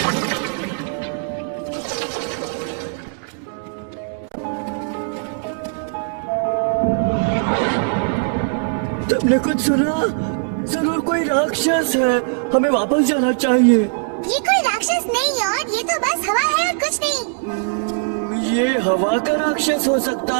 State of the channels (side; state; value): left; silent; digital silence